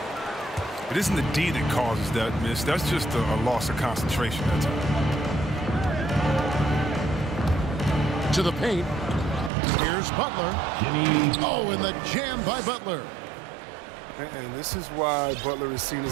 It isn't the D that causes that miss. That's just a loss of concentration at times. To the paint. Here's Butler. Jimmy. Oh, and the jam by Butler. And this is why Butler is seen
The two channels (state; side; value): drops out; left; at 9.5 s